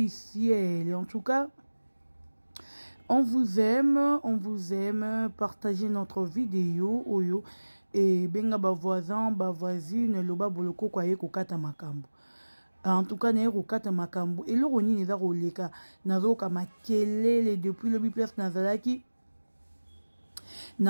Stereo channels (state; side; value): inverted; both; correlation -1.00